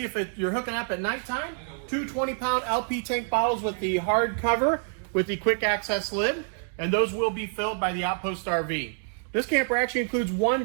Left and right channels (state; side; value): silent; left; 60 dB below the other